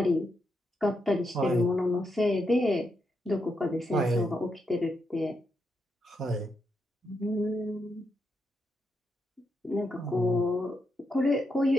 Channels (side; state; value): both; normal; correlation 0.83